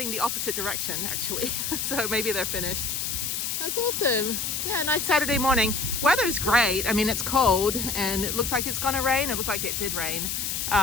the opposite direction, actually. So maybe they're finished. That's awesome. Yeah, nice Saturday morning. Weather's great. I mean, it's cold and it looks like it's gonna rain. It looked like it did rain.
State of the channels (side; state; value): left; noise; hiss, 2 dB below the sound